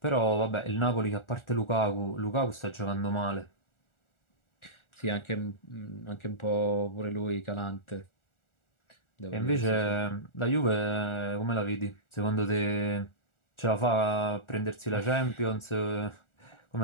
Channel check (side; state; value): right; late; 1.4 ms